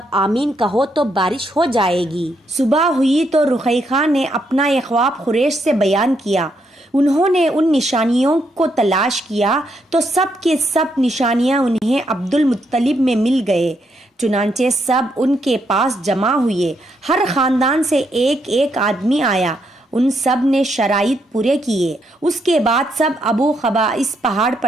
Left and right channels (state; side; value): normal; both; correlation 0.77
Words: آمین کہو تو بارش ہو جائے گی۔ صبح ہوئی تو رقیقہ نے اپنا یہ خواب قریش سے بیان کیا۔ انہوں نے ان نشانیوں کو تلاش کیا تو سب کے سب نشانیاں انہیں عبد المطلب میں مل گئے۔ چنانچہ سب ان کے پاس جمع ہوئے، ہر خاندان سے ایک ایک آدمی آیا، ان سب نے شرائط پورے کیے۔ اس کے بعد سب ابو قبیس پہاڑ